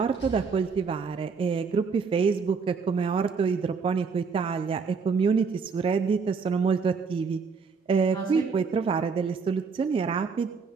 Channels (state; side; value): quieter; left; 5.3 dB